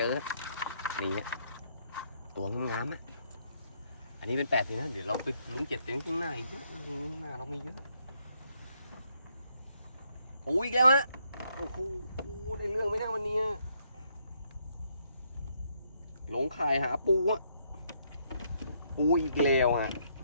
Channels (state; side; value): inverted; both; correlation -0.73